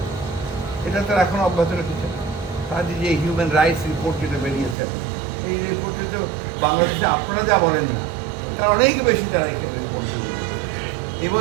এটা তারা এখন অব্যাহত রেখেছে। তাদের যে হিউম্যান রাইটস রিপোর্ট যেটা বেরিয়েছে, এই রিপোর্টে তো বাংলাদেশে আপনারা যা বলেন না, তার অনেক বেশি তারা এখানে রিপোর্ট বেরিয়েছে, এবং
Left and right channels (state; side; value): drops out; left; at 4.8 s